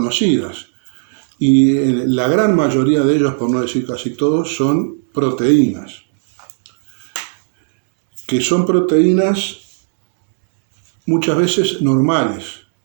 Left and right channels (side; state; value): left; silent; digital silence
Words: y la gran mayoría de ellos, por no decir casi todos, son proteínas, que son proteínas muchas veces normales,